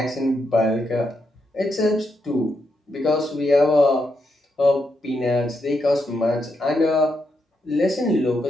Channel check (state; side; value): normal; both; correlation 0.81